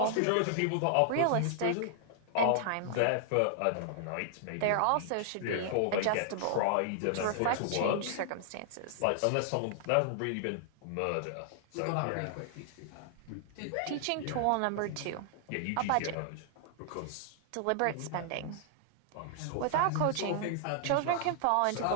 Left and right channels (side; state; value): both; different; correlation -0.01